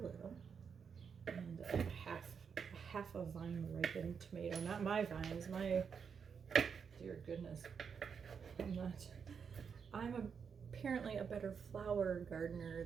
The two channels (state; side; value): quieter; left; 6.5 dB